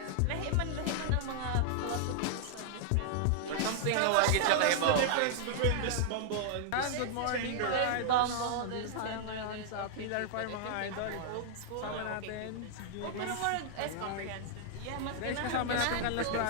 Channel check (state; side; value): different; both; correlation -0.01